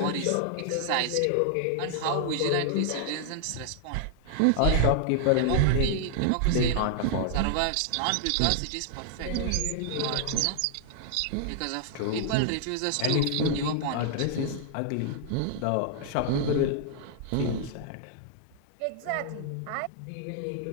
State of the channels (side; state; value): both; different; correlation -0.01